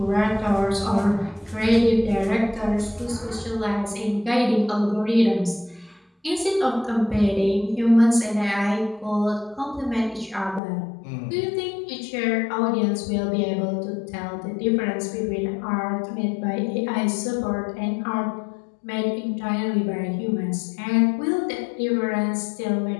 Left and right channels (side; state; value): right; drops out; at 10.6 s